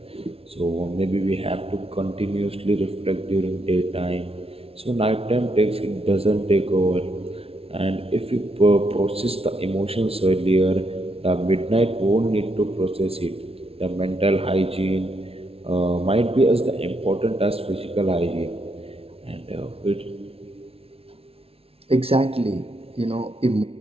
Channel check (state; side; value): late; left; 0.28 ms